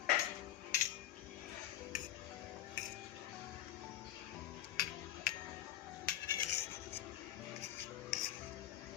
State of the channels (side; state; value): right; quieter; 12.9 dB